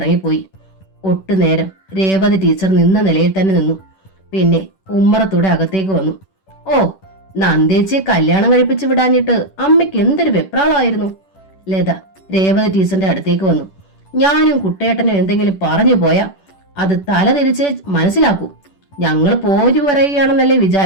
ഒട്ടുനേരം രേവതി ടീച്ചർ നിന്ന നിലയിൽ തന്നെ നിന്നു. പിന്നെ ഉമ്മറത്തൂടെ അകത്തേക്ക് വന്നു. ഓ, നന്ദേച്ചിയെ കല്യാണം കഴിപ്പിച്ചു വിടാഞ്ഞിട്ട് അമ്മയ്ക്ക് എന്തൊരു വെപ്രാളമായിരുന്നു. ലത രേവതി ടീച്ചറിന്റെ അടുത്തേക്ക് വന്നു. ഞാനും കുട്ടേട്ടനും എന്തെങ്കിലും പറഞ്ഞു പോയാ അത് തല തിരിച്ച് മനസ്സിലാക്കൂ. ഞങ്ങൾ പോരു പറയുകയാണെന്നല്ലേ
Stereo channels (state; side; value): late; right; 10 ms